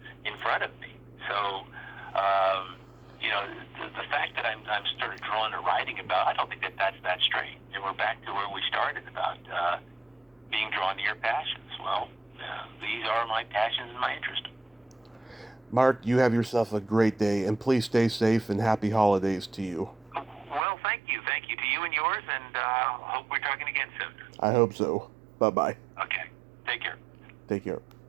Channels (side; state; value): left; drops out; at 20.6 s